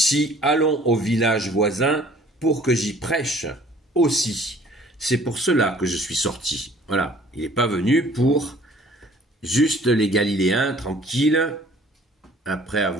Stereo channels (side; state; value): both; normal; correlation 0.53